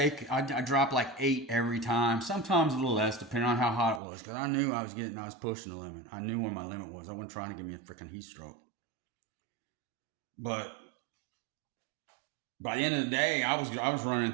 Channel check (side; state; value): left; drops out; at 4.0 s